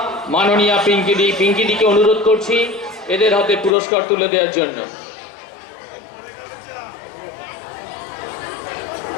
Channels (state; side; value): drops out; right; at 3.7 s